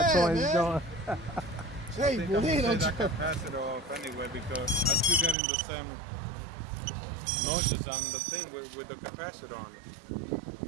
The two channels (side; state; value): left; drops out; at 5.4 s